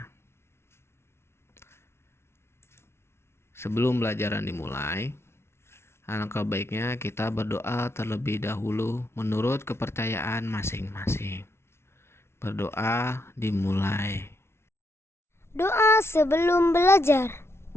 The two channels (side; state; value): right; late; 0.12 ms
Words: Sebelum pelajaran dimulai, alangkah baiknya kita berdoa terlebih dahulu menurut kepercayaan masing-masing. Berdoa dimulai. Doa sebelum belajar.